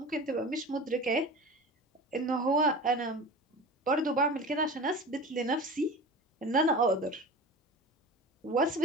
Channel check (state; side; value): normal; both; correlation 0.34